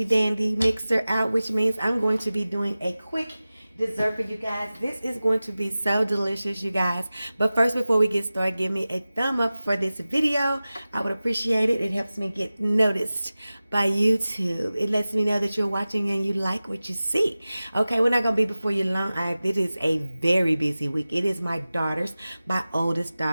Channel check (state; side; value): inverted; both; correlation -0.97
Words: dandy mixer out, which means I'm going to be doing a quick dessert for you guys. This is going to be so delicious, you guys. But first, before we get started, give me a thumb up for this video. I would appreciate it. It helps me get noticed by YouTube. It lets me know that you're watching and you like what you see. Okay, we're not gonna be before you long. It is a very busy week. It is my oldest